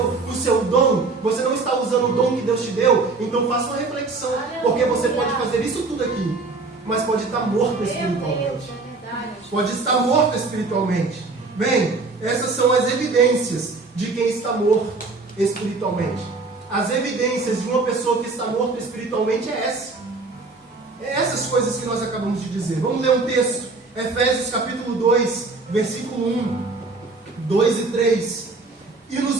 o seu dom, você não está usando o dom que Deus te deu. Então faça uma reflexão, porque você pode fazer isso tudo aqui, mas pode estar morto espiritualmente. Pode estar morto espiritualmente. Bem, essas são as evidências de quem está morto espiritualmente. As evidências de uma pessoa que está morta espiritualmente essas coisas que nós acabamos de dizer. Vamos ler um texto, Efésios capítulo 2, versículo 1, 2 e 3. E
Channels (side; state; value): left; quieter; 3.8 dB